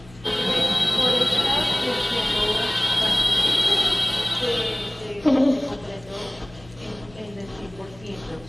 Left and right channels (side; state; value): left; noise; hum, 22 dB below the sound